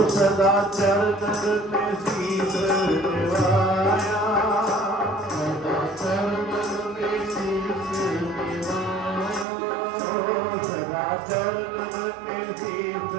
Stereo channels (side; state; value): left; drops out; at 9.5 s